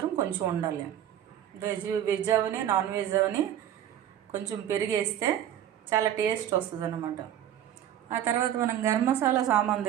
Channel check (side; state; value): left; quieter; 10.7 dB